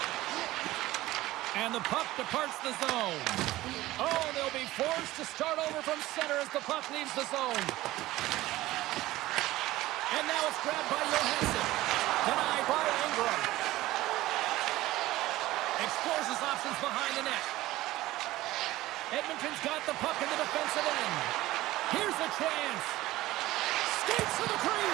And the puck departs the zone. Oh, they'll be forced to start over from center as the puck leaves the zone. And now it's grabbed by Johansson. Denied by Ingram. Explores his options behind the net. Edmonton's got the puck in the defensive end. Here's a chance. Skates to the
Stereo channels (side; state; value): left; quieter; 17.0 dB